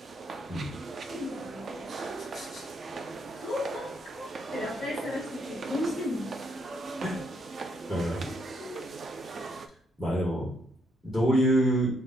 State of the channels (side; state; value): both; normal; correlation 0.74